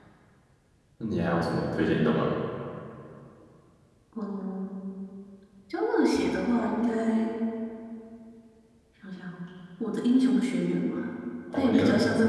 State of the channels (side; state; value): both; identical; correlation 1.00